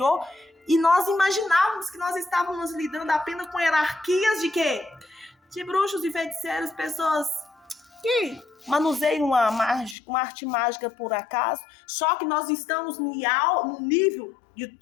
e nós imaginávamos que nós estávamos lidando apenas com hierarquias de quê? De bruxos e feiticeiros, pessoas que manuseiam uma arte mágica por acaso, só que nós estamos no nível de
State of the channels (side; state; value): right; drops out; at 10.0 s